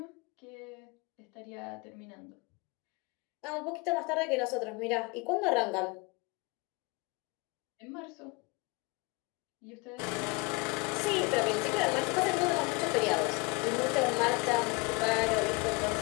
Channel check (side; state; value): right; quieter; 28.2 dB